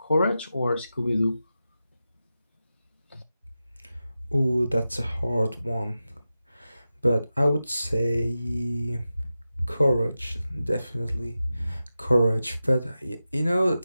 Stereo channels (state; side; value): inverted; both; correlation -0.93